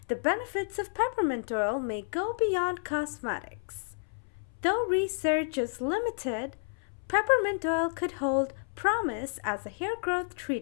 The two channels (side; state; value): right; silent; 57 dB below the other